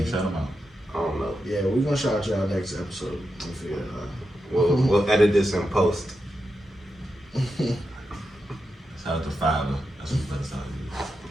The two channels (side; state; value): both; normal; correlation 0.88